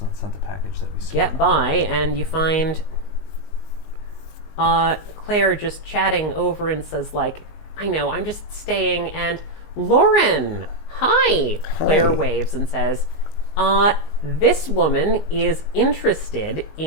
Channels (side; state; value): right; late; 19 ms